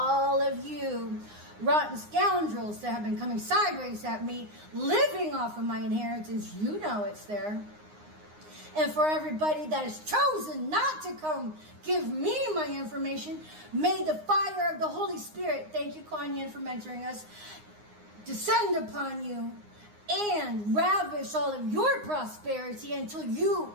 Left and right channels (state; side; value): late; left; 9.7 ms